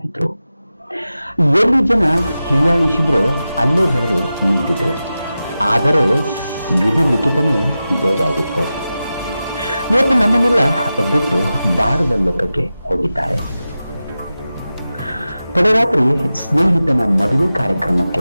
ಎಲ್ಲಿ ಜನ ಹೀಯಾಳಿಸಿದ್ರು ಅಲ್ಲೇ ಬೆಳೆದು ನಿಂತಿದ್ರು. ಆದರೆ ವಿಧಿ ಲಿಖಿತನೇ ಬೇರಾಗಿತ್ತು. ಇವತ್ತು ನಮ್ಮನ್ನೆಲ್ಲ ಬಿಟ್ಟು ಬಾರದ ಲೋಕಕ್ಕೆ ಹೋಗಿದ್ದಾರೆ. ತಡರಾತ್ರಿ ಸ್ನೇಹಿತನ ಮದುವೆ ಕಾರ್ಯಕ್ರಮಕ್ಕೆ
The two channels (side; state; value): both; inverted; correlation -0.93